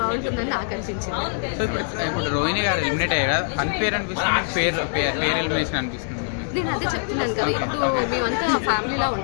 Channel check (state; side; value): silent; right; 58 dB below the other